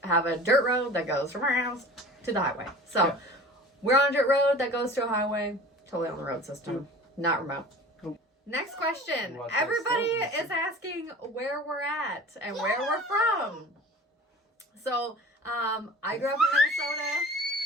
have a dirt road that goes from our house to the highway. So, we're on a dirt road that goes to a highway. Totally on the road system. Not remote. Next question. Everybody is asking where we're at and where we're from. So, I grew up in Minnesota.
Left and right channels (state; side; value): normal; both; correlation 0.41